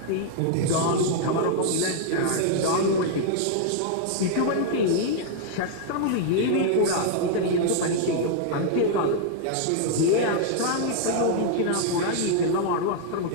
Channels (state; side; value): different; both; correlation -0.01